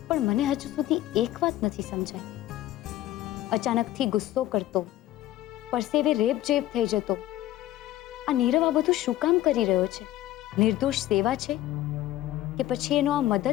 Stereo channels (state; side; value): quieter; right; 14.5 dB